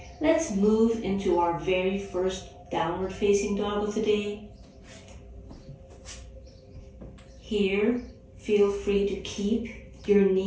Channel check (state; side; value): identical; both; correlation 1.00